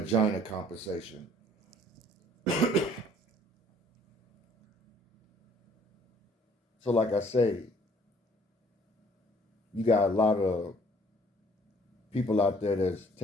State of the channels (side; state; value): both; normal; correlation 0.58